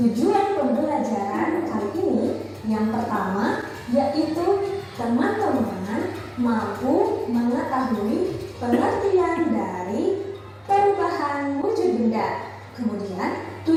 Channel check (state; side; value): identical; both; correlation 1.00